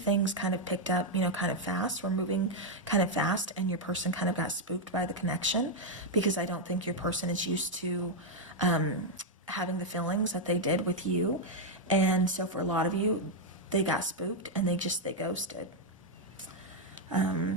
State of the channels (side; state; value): both; normal; correlation 0.00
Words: kind of picked up, you know, kind of fast. We're moving kind of fast, and your person kind of got spooked by the connection, because I don't think your person is used to having the feelings that they did with you. And so for a lot of you, they got spooked and they ghosted.